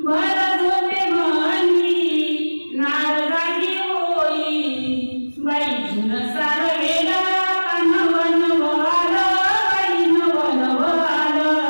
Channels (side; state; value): both; inverted; correlation -1.00